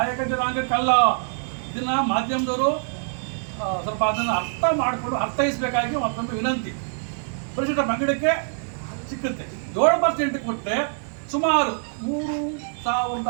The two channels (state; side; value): silent; left; digital silence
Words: ಜನಾಂಗಕ್ಕಲ್ಲ, ಇದನ್ನು ಮಾಧ್ಯಮದವರು ಸ್ವಲ್ಪ ಅದನ್ನು ಅರ್ಥೈಸಬೇಕಾಗಿ ಮತ್ತೊಂದು ವಿನಂತಿ. ಪರಿಶಿಷ್ಟ ಪಂಗಡಕ್ಕೆ ಸಿಕ್ಕುತ್ತೆ. 7% ಕೊಟ್ಟರೆ ಸುಮಾರು